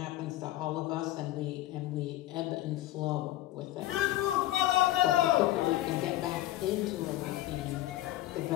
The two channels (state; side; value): quieter; right; 15.4 dB